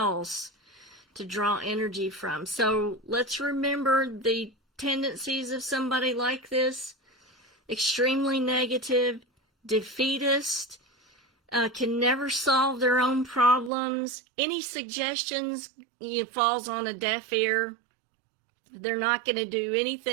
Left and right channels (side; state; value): left; drops out; at 13.7 s